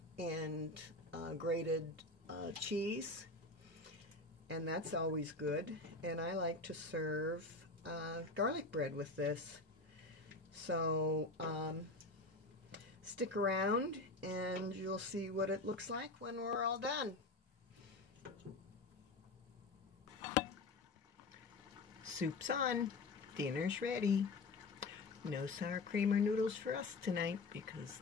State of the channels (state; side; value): quieter; right; 3.2 dB